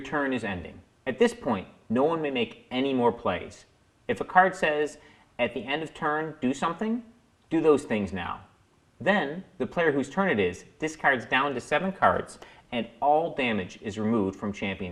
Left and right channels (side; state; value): both; identical; correlation 1.00